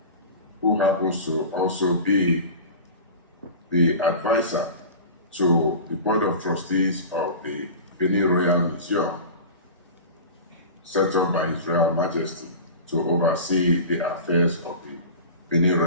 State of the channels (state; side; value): inverted; both; correlation -0.33